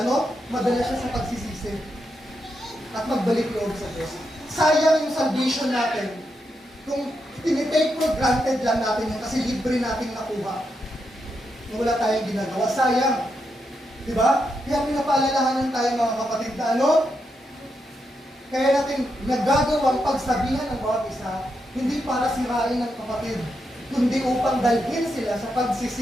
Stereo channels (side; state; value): both; normal; correlation 0.83